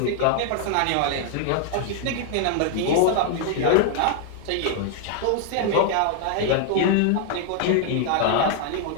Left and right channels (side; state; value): both; different; correlation 0.00